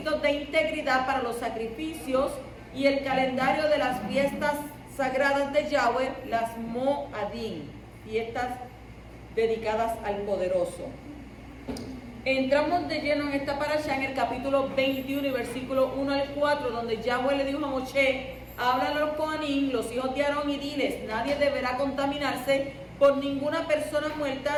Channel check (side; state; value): both; identical; correlation 1.00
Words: de integridad para los sacrificios y el calendario de las fiestas sagradas de Yahweh, las Moadim, fiestas dedicadas al Poderoso. Entramos de lleno en esta parashá en el capítulo 21 y versículo 1 al 4, donde Yahweh le dijo a Moshe: habla a los Kohanim, los hijos de Aarón, y diles: nadie deberá contaminarse por ninguna persona